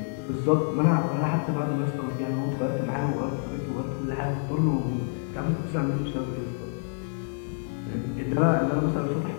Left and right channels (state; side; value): silent; right; 60 dB below the other